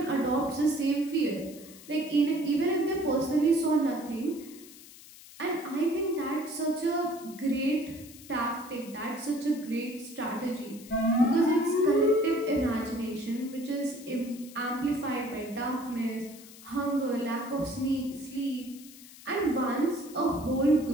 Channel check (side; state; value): left; noise; hiss, 19 dB below the sound